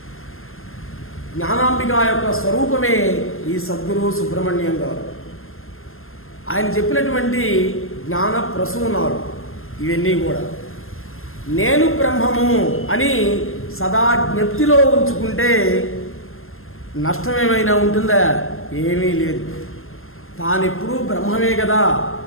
జ్ఞానాంబిక యొక్క స్వరూపమే ఈ సద్గురు సుబ్రహ్మణ్యం గారు. ఆయన చెప్పినటువంటి జ్ఞాన ప్రసూనాలు ఇవన్నీ కూడా నేను బ్రహ్మము అని సదా జ్ఞప్తిలో ఉంచుకుంటే నష్టమేమైనా ఉంటుందా? ఏమీ లేదు. తానెప్పుడూ బ్రహ్మమే కదా,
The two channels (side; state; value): right; late; 0.61 ms